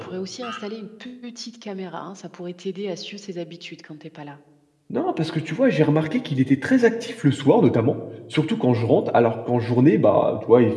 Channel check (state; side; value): identical; both; correlation 1.00